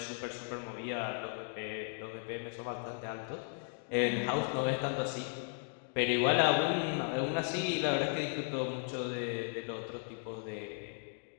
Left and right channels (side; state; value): right; silent; 54 dB below the other